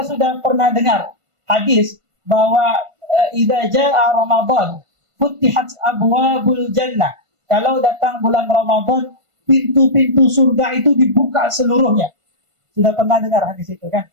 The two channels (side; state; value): left; late; 1.5 ms